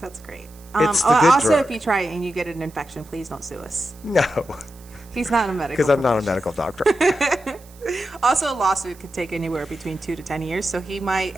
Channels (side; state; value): right; noise; hiss, 25 dB below the sound